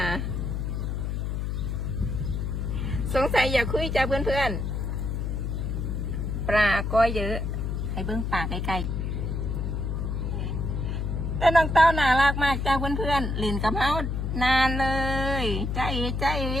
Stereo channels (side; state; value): left; noise; hum, 1 dB below the sound